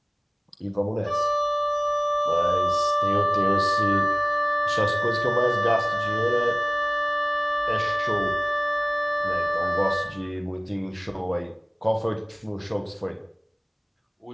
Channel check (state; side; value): identical; both; correlation 1.00